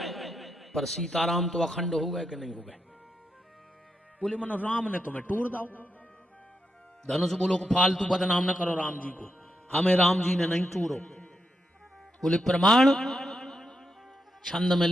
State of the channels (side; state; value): both; normal; correlation 0.84